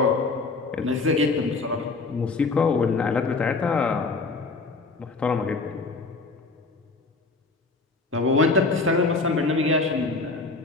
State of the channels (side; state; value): right; quieter; 3.8 dB